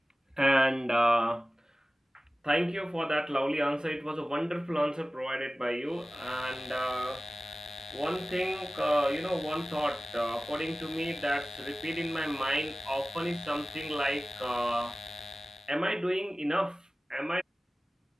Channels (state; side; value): normal; both; correlation 0.97